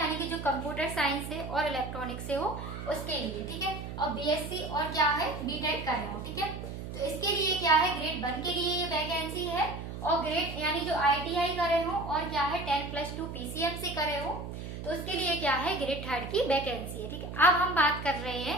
कि जो कंप्यूटर साइंस से और इलेक्ट्रॉनिक से हो उसके लिए, ठीक है। और BSc और क्या है BTech कर रहे हो, ठीक है। तो इसके लिए क्या है, ग्रेड 1 के लिए ये वैकेंसी है, और ग्रेड यानी जो ITI करे हो और क्या है 10+2 PCM से करे हो तो उसके लिए क्या है ग्रेड 3 की वैकेंसी है, ठीक है। अब हम बात कर रहे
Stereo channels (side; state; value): right; noise; hum, 8 dB below the sound